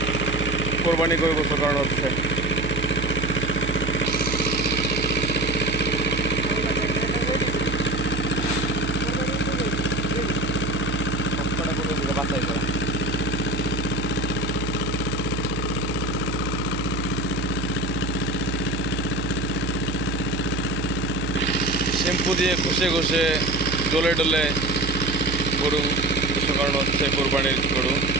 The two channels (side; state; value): right; noise; hum, 4 dB below the sound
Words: কোরবানি করে গোসল করানো হচ্ছে। শ্যাম্পু দিয়ে ঘষে ঘষে ডলে ডলে গরু গোসল করানো হচ্ছে। কোরবানির গরু